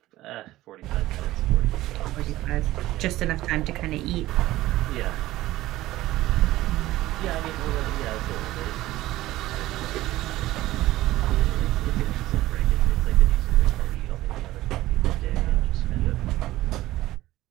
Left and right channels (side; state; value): left; quieter; 16.3 dB